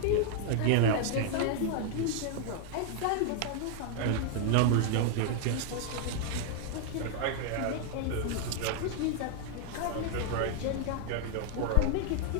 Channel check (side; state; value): both; different; correlation 0.00